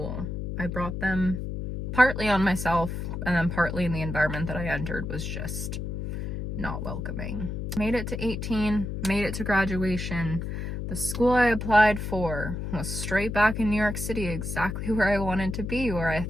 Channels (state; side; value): noise; left; hum, 4 dB below the sound